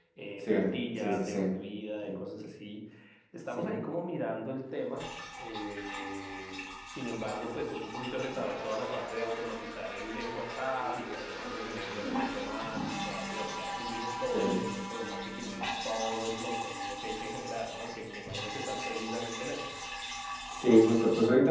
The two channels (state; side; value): identical; both; correlation 1.00